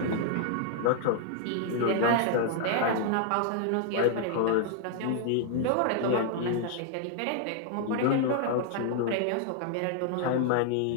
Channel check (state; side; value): different; both; correlation 0.00